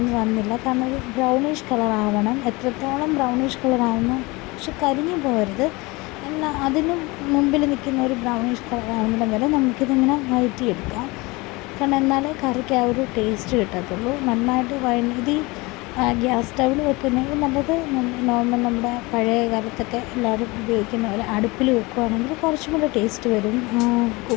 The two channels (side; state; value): right; quieter; 24.1 dB